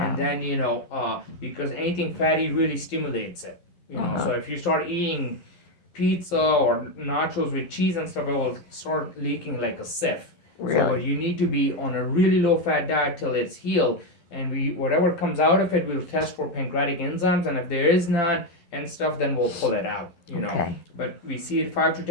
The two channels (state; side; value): late; right; 12 ms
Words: then because anything fatty really stimulates it, so if you start eating pizza or nachos with cheese and stuff, it will start leaking like a sieve. Really? So you need to be on a really low fat diet till it's healed, and whatever comes out of it, we'll test for pancreatic enzymes, and if there is none and stuff, then we'll pull it out. Okay. But we see it 5 to